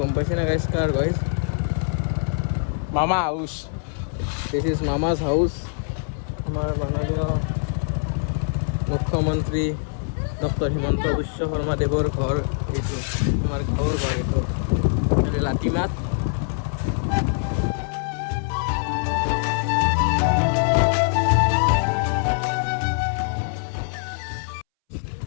পাইছে না গাইজ কাৰ গাইজ মামা হাউচ দিছ ইজ মামাজ হাউচ আমাৰ মাননীয় মুখ্যমন্ত্ৰী ডক্টৰ হিমন্ত বিশ্ব শৰ্মা দেৱৰ ঘৰ এইটো আমাৰ গাঁৱৰ ঘৰ এইটো লাটিমাত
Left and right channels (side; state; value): right; silent; 63 dB below the other